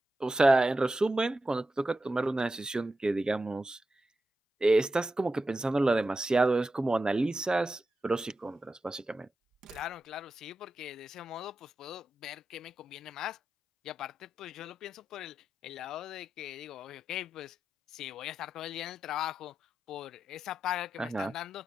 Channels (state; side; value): normal; both; correlation 0.90